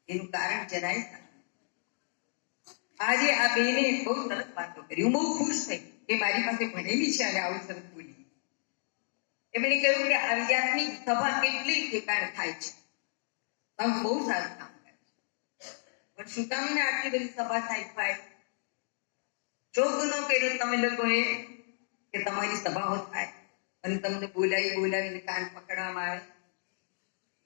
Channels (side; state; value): right; silent; digital silence